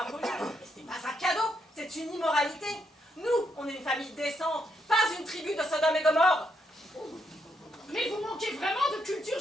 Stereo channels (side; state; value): both; normal; correlation 0.77